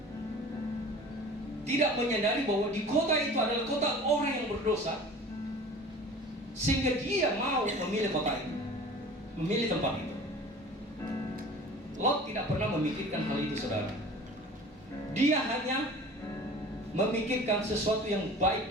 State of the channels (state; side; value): normal; both; correlation 0.42